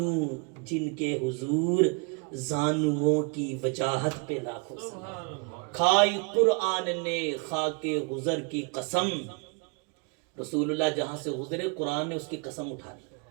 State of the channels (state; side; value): quieter; left; 34.5 dB